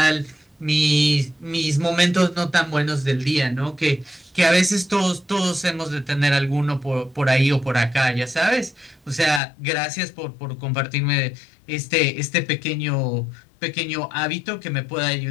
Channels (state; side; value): drops out; right; at 9.4 s